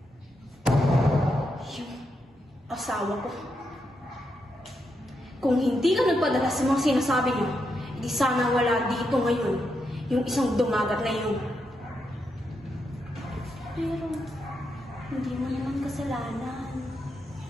Asawa ko. Kung hindi ka nagpadala sa mga sinasabi niyo, hindi sana wala dito ngayon yung isang dumagat na yun. Pero, hindi mo naman kasalanan.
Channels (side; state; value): both; normal; correlation 0.83